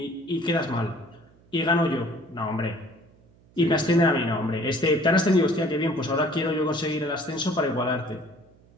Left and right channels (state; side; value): noise; right; hum, 29 dB below the sound